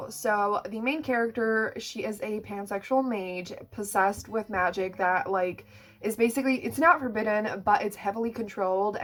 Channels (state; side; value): identical; both; correlation 1.00